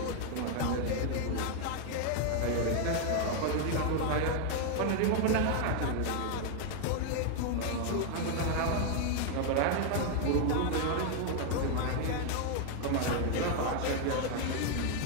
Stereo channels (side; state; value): both; different; correlation 0.00